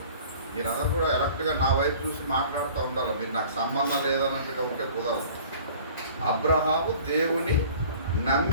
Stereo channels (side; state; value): both; inverted; correlation -0.47